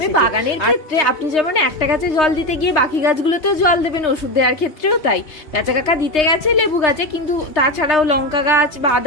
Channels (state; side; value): late; right; 3.3 ms